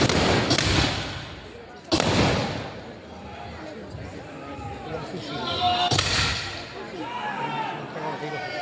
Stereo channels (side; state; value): both; identical; correlation 1.00